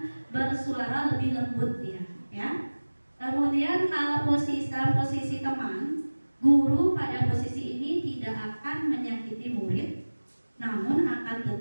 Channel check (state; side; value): inverted; both; correlation -1.00